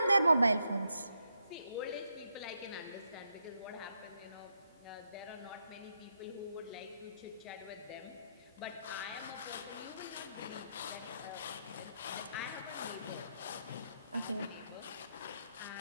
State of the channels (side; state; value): both; inverted; correlation -0.80